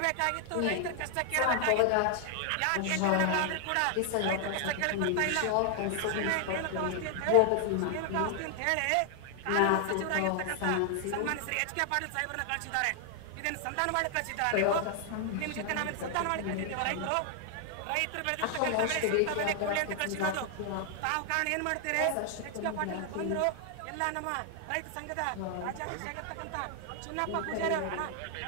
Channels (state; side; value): different; both; correlation 0.00